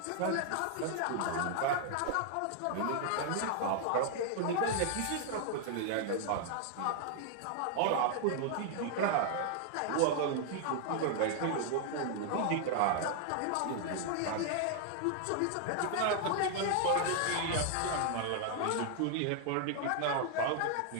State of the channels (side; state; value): both; different; correlation 0.00